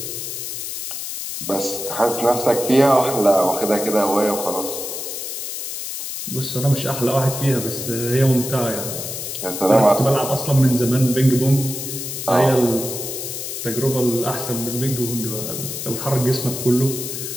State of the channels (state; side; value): noise; left; hiss, 6 dB below the sound